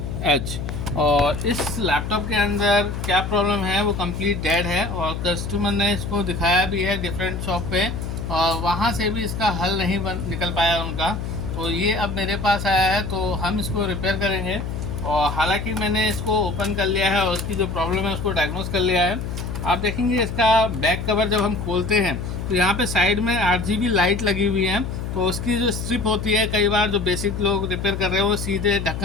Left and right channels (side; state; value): left; noise; hum, 5 dB below the sound